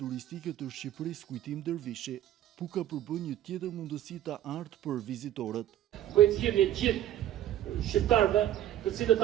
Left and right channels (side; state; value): left; quieter; 12.2 dB